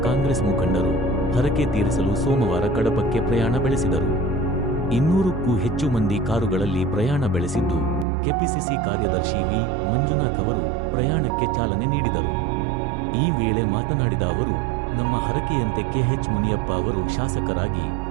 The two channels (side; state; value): left; drops out; at 8.1 s